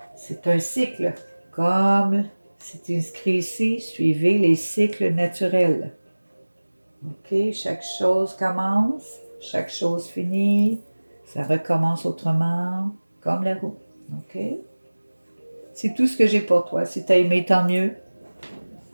C'est un cycle, comme c'est inscrit ici, suivez les cycles naturels. OK, chaque chose commence, chaque chose finit, ça recommence autrement, comme la roue. OK? C'est tout ce que j'ai pour toi. Si tu as aimé, tant mieux.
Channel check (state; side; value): inverted; both; correlation -1.00